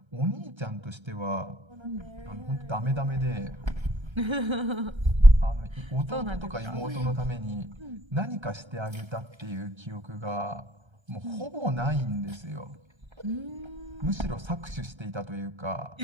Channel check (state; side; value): late; left; 1.3 ms